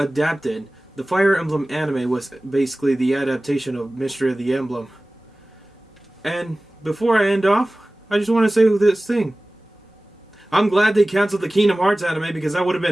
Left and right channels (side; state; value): both; normal; correlation 0.98